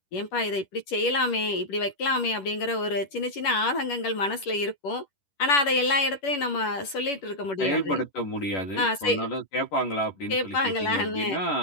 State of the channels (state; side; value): late; right; 11 ms